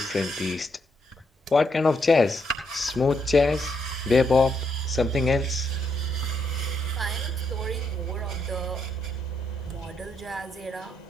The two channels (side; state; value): both; normal; correlation 0.77